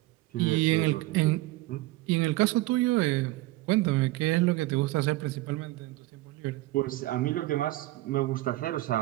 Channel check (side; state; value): left; quieter; 18.5 dB